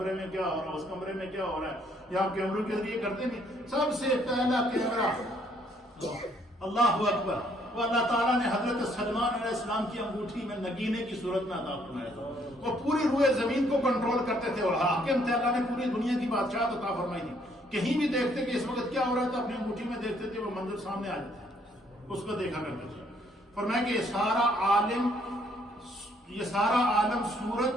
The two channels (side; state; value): both; normal; correlation 0.67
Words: میں کیا ہو رہا ہے، اس کمرے میں کیا ہو رہا ہے. یہ آپ کیمروں کے ذریعے کرتے نہیں. سب سے پہلا کیمرہ اللہ اکبر وہ اللہ تعالیٰ نے حضرت سلمان علیہ السلام کی انگوٹھی میں نگینے کی صورت میں عطا فرمایا تھا. وہ پوری روئے زمین کو کنٹرول کرتے تھے، اور حاکم تھے. اللہ نے پوری دنیا کی بادشاہت عطا فرمائی تھی. کہیں بھی دیکھتے کہ اس وقت کیا ہو رہا تھا، اپنی انگوٹھی میں دیکھتے تھے، وہ منظر سامنے آ جاتا، اس کو دیکھا کرتے تھے. فرمایا کہ یہ سارا عالم